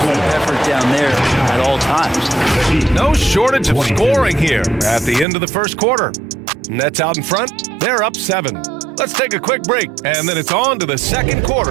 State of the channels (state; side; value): drops out; left; at 5.2 s